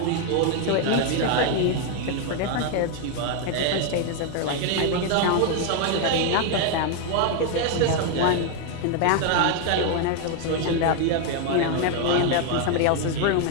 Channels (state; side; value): different; both; correlation 0.01